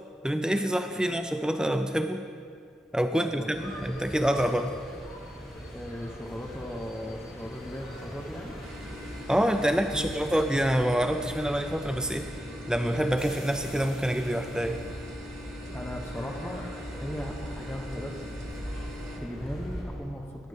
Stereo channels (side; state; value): both; normal; correlation 0.88